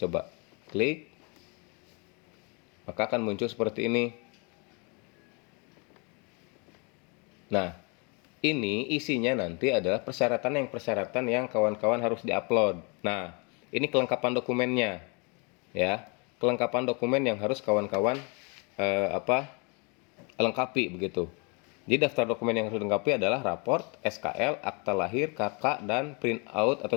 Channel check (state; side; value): quieter; right; 32.7 dB